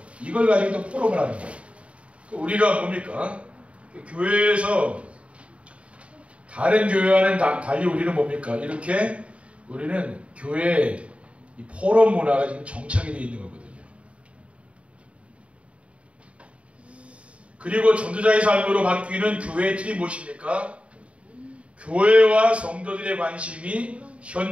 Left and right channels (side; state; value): left; late; 0.062 ms